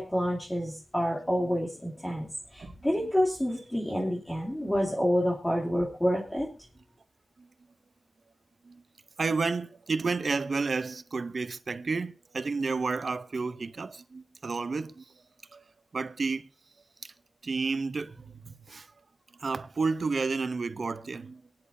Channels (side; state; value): both; normal; correlation 0.95